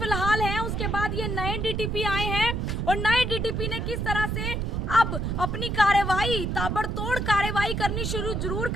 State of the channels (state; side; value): noise; right; rumble, 1 dB below the sound